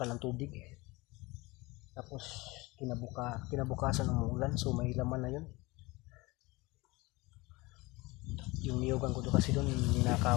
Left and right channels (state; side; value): quieter; right; 22.9 dB